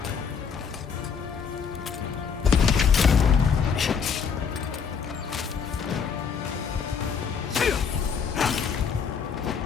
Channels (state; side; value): quieter; right; 6.4 dB